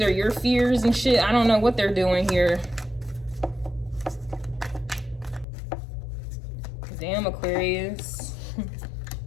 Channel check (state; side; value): drops out; right; at 5.5 s